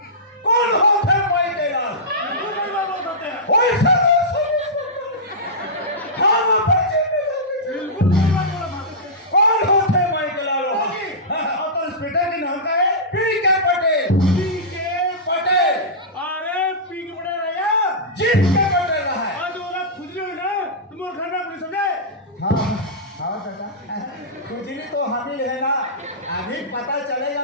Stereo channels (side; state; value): both; normal; correlation -0.15